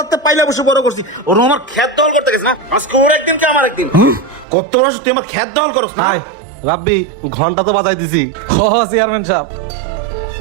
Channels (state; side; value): drops out; left; at 4.5 s